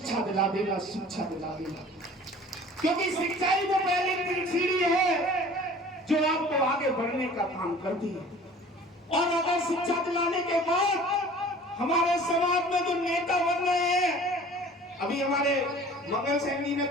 दिला देना, शिक्षा दिला देना, क्योंकि शिक्षा ही वो पहली सीढ़ी है जो आपको आगे बढ़ने का काम करती है। और अगर शिक्षा दिलाने के बाद हमारे समाज में जो नेता बन रहे हैं, अभी हमारे मंगल सैनी ने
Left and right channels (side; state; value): both; normal; correlation 0.47